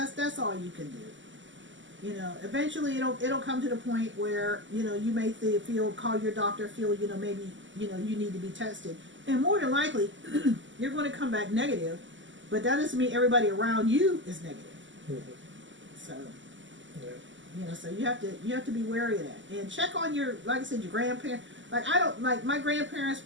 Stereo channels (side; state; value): left; late; 0.55 ms